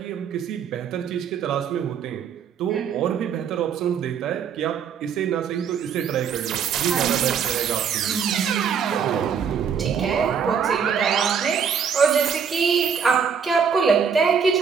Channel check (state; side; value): quieter; left; 7.0 dB